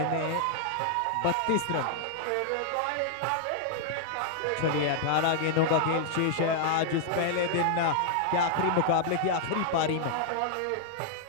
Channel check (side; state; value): both; different; correlation -0.01